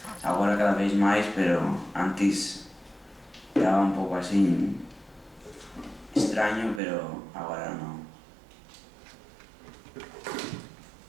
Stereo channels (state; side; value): drops out; left; at 6.8 s